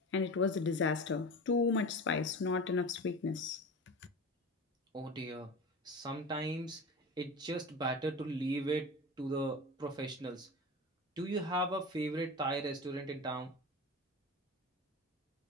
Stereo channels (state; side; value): normal; both; correlation 0.31